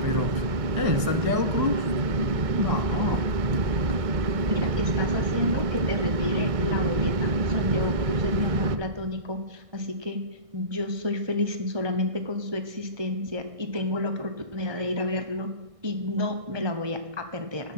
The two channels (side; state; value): left; late; 1.6 ms